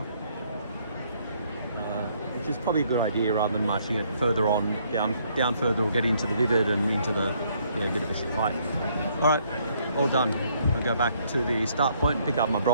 Which is probably a good idea rather than marching it further on, down further, or get into the vivid and into the bit of a shit fight. Alright, all done. I'll go back to the start point and pick up my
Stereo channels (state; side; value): inverted; both; correlation -0.67